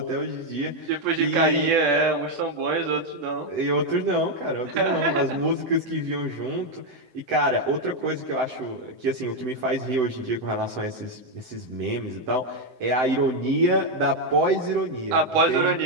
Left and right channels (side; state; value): left; late; 7.8 ms